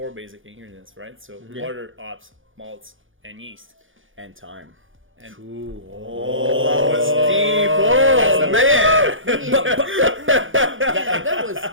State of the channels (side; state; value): left; late; 0.58 ms